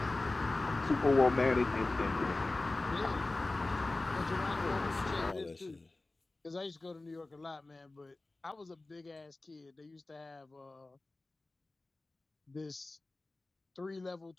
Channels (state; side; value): quieter; right; 3.1 dB